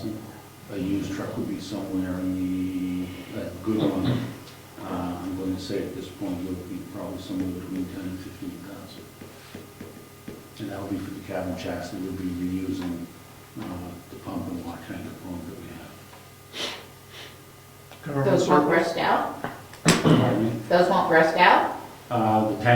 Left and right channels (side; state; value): both; identical; correlation 1.00